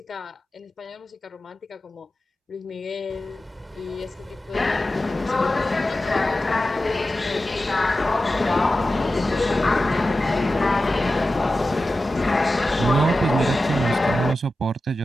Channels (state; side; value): normal; both; correlation 0.93